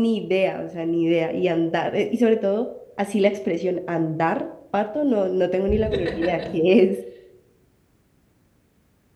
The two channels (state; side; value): identical; both; correlation 1.00